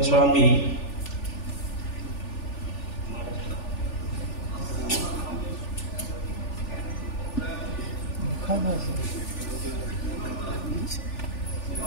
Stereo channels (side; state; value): right; late; 3.4 ms